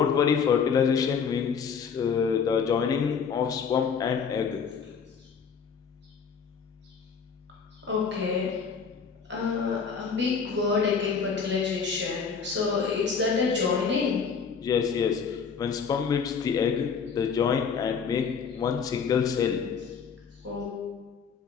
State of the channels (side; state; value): right; quieter; 6.2 dB